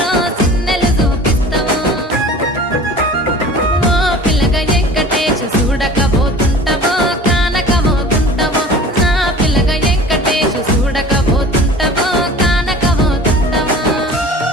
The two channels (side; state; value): both; normal; correlation 0.42